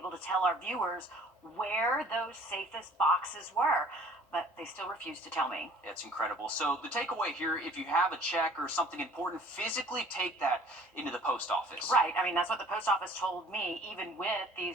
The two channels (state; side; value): normal; both; correlation 0.52